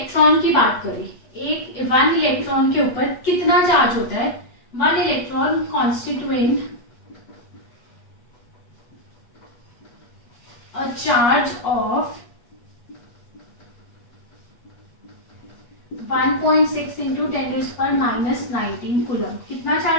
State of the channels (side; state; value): right; late; 8.3 ms